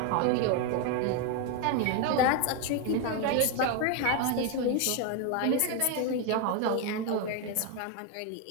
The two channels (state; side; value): different; both; correlation 0.01